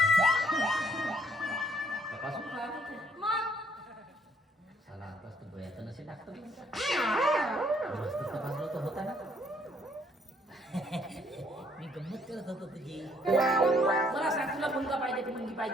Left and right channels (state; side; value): normal; both; correlation 0.66